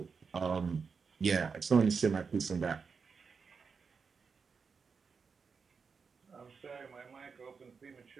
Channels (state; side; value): quieter; left; 5.5 dB